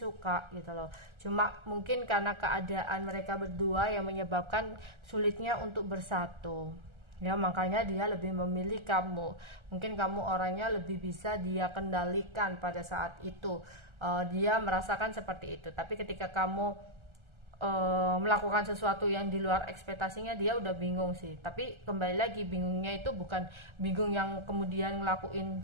gitu loh. Cuma mungkin karena keadaan mereka berdua yang menyebabkan sulitnya untuk bersatu, ya, makanya dia lebih memilih kamu. Mungkin kamu orangnya lebih bisa dia kendalikan pada saat itu, dia merasakan seperti itu. Tapi ketika kamu melakukan sesuatu yang di luar ekspektasinya, dia udah bingung sih. Tapi kembali lagi, bingungnya itu bukan bingung yang kemudian ngelakuin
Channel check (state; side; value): late; left; 1.4 ms